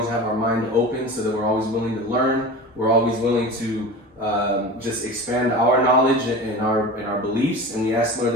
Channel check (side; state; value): both; normal; correlation 0.32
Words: have our mind open so that we're always willing to learn. We're always willing to just expand our knowledge and our beliefs. And we ask, Lord,